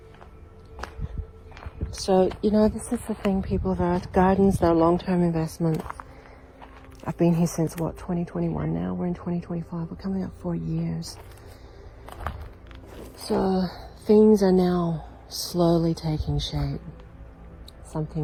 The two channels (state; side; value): identical; both; correlation 1.00